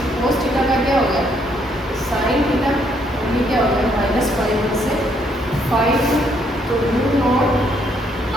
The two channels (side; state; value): both; normal; correlation 0.70